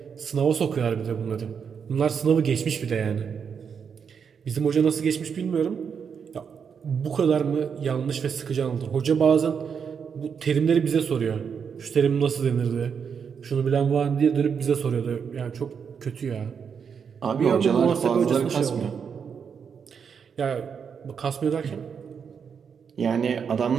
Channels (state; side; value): quieter; left; 6.7 dB